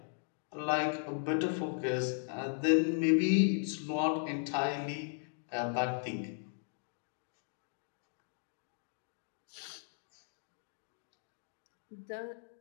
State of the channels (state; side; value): silent; right; digital silence